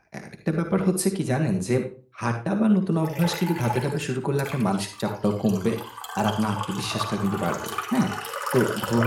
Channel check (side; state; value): both; identical; correlation 1.00